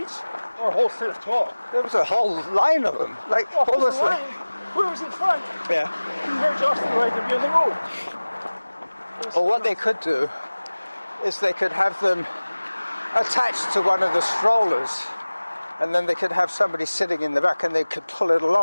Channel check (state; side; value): inverted; both; correlation -1.00